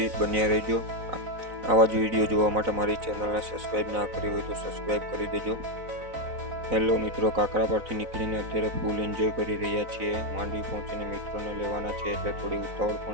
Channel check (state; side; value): late; left; 4.0 ms